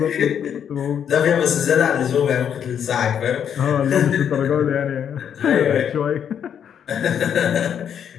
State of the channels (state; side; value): quieter; right; 8.5 dB